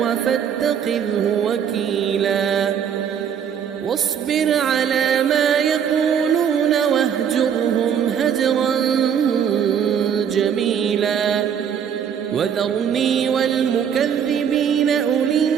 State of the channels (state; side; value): quieter; left; 8.1 dB